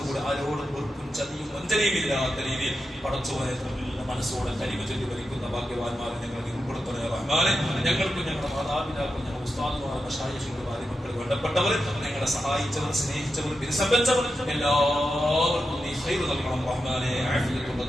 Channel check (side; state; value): both; normal; correlation 0.89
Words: ആരോടും വെറുപ്പും ചതിയും വഞ്ചനയും ഇല്ലാത്ത രീതിയിൽ പടച്ചവനെ മനസ്സോടെ കരിമ ചൊല്ലി ഭരിക്കുന്ന ഭാഗ്യവാന്മാരെ ഞങ്ങൾ ഉൾപ്പെടുത്തണേ റഹ്മാനെ. ഞങ്ങൾക്കും ഞങ്ങളുടെ മാതാപിതാക്കളും ഞങ്ങളുടെ ഉസ്താദുമാർ മശായിഖുകൾ ഭാര്യമക്കൾ വേണ്ടപ്പെട്ടവർ, ഞങ്ങളെ സഹായിച്ചവർ, സ്നേഹിച്ചവർ, വിരസംബന്ധവർ എല്ലാവർക്കും നീ ഖൈർ നൽകണം റഹ്മാനെ. ആഫിയത്തുള്ള